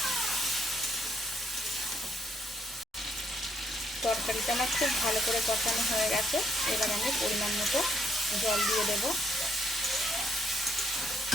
তরকারিটা আমার খুব ভালো করে কষানো হয়ে গেছে। এবার আমি পরিমাণ মতো জল দিয়ে দেবো।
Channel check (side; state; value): both; normal; correlation 0.72